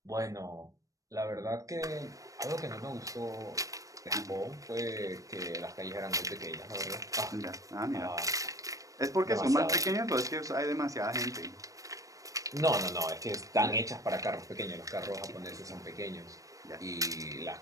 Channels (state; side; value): late; left; 0.16 ms